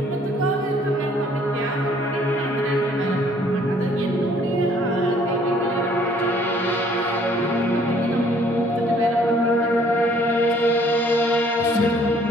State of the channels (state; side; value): normal; both; correlation 0.60